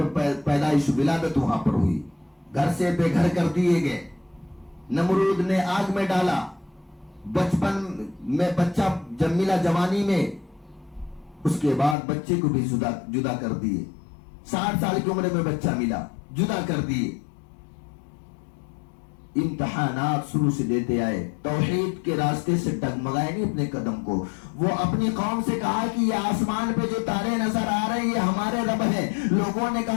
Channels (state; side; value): drops out; right; at 12.0 s